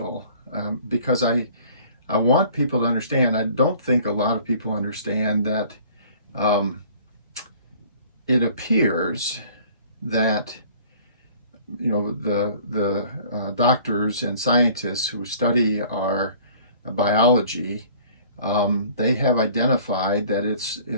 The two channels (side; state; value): both; inverted; correlation -0.51